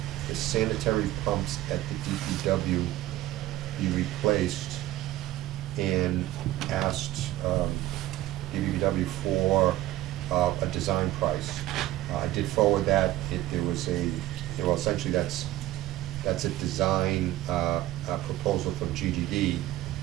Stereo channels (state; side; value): quieter; left; 15.3 dB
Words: the sanitary pumps at the DPW be replaced, and asked DPW for a design price. I did forward that. Well, essentially that's a design proposal from GGD.